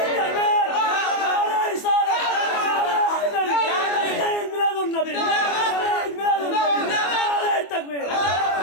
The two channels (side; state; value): right; late; 24 ms